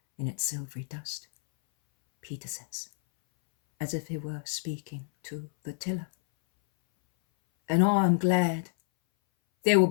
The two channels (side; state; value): right; silent; 59 dB below the other